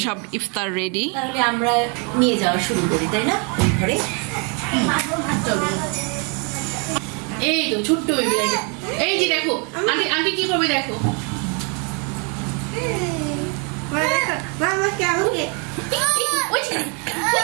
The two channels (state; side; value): quieter; left; 35.3 dB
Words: সব ইফতার রেডি। তাহলে আমরা নিয়ে যাওয়া শুরু করি, তাই না? ওই ঘরে এই তো ছোট্ট বেবি দেখো। এই যে দেখো আন্টি, আন্টি কি করবে দেখো।